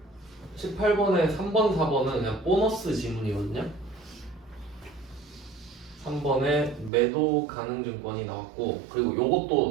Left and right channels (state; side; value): drops out; left; at 6.9 s